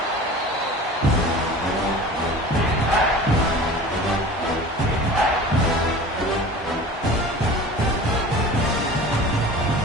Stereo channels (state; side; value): normal; both; correlation 0.39